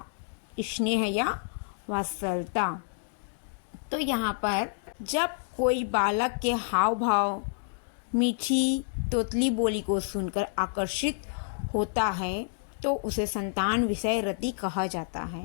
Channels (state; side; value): silent; right; digital silence